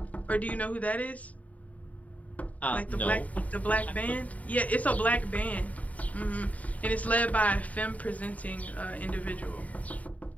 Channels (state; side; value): late; right; 0.070 ms